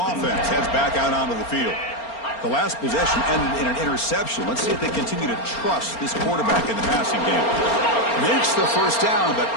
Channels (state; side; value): late; right; 4.3 ms